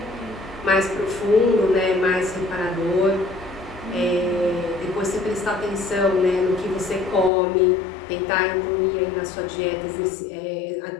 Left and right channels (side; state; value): right; drops out; at 7.3 s